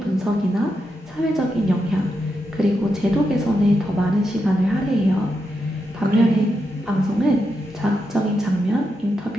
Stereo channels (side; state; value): both; normal; correlation 0.85